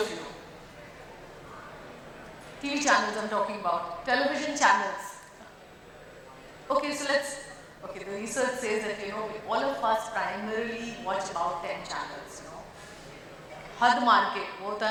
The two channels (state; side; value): identical; both; correlation 1.00